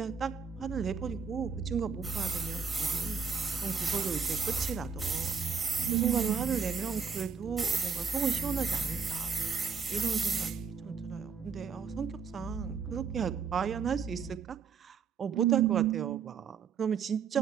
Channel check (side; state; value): left; quieter; 6.0 dB